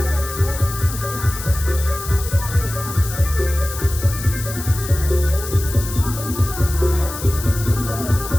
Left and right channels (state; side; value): noise; left; hiss, 10 dB below the sound